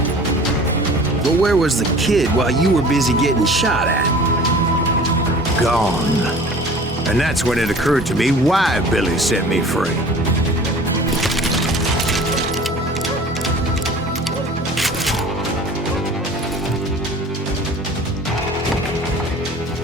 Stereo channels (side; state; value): both; normal; correlation 0.45